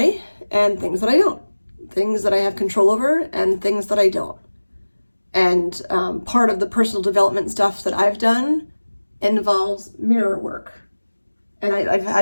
and things that I don't. Things that I have control over and things that I don't. And part of the personal development stuff that I've done involves mirror work. And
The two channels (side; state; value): both; inverted; correlation -1.00